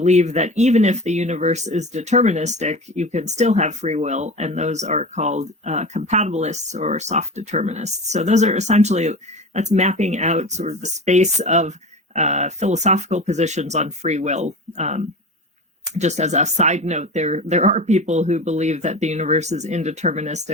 that even if the universe is deterministic, you can still have free will, and those are called compatibilists or soft determinists. So those are essentially, that's mapping out sort of the space of philosophical positions on free will. Just as a side note, there are people who believe that the universe is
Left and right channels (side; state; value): both; normal; correlation 0.31